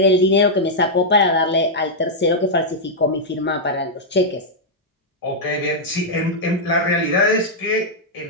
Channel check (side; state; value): both; normal; correlation -0.06